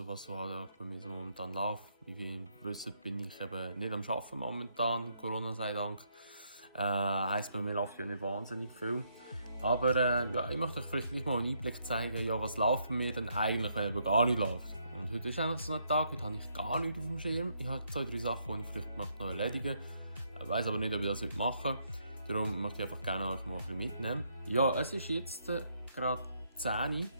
was so halt bei mir so momentan läuft. Wie ihr wisst, bin ich eben nicht am Arbeiten momentan, Corona sei Dank. Heisst, bei mir läuft ja nicht wahnsinnig viel. Aber ja, ich möchte euch vielleicht mal einen Einblick zeigen, ja, was läuft bei mir denn eigentlich, wenn eben gar nicht läuft. Und heute ist eigentlich so ein Tag, heute habe ich gar nichts auf dem Schirm. Ich habe 2-3 Sachen, die ich vielleicht noch erledigen möchte. Ich weiss aber nicht, ob ich das heute mache. Darum möchte ich einfach gerne euch mal ein bisschen mitnehmen. Ja, es ist jetzt gerade 10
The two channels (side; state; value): both; inverted; correlation -0.74